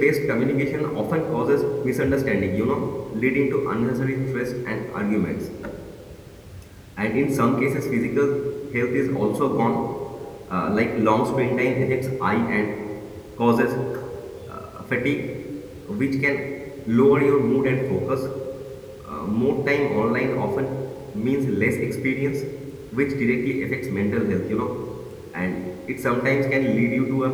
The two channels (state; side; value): identical; both; correlation 1.00